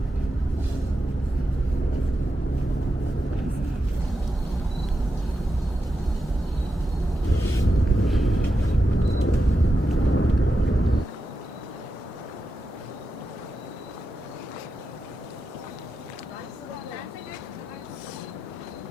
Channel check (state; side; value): normal; both; correlation 0.88